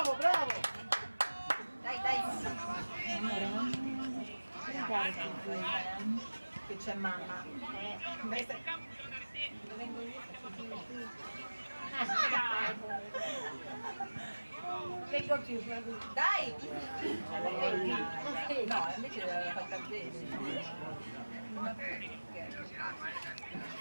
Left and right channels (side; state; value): both; inverted; correlation -1.00